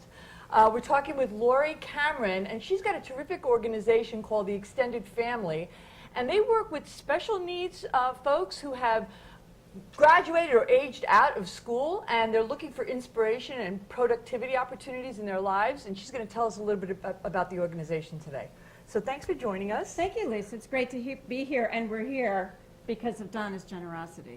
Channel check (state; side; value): identical; both; correlation 1.00